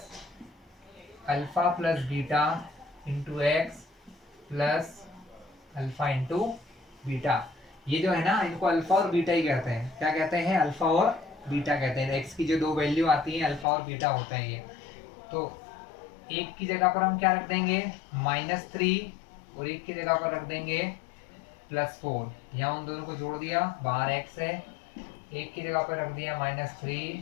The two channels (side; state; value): right; drops out; at 13.7 s